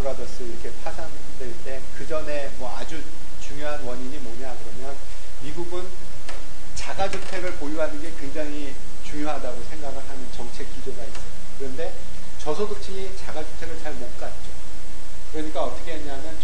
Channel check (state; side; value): identical; both; correlation 1.00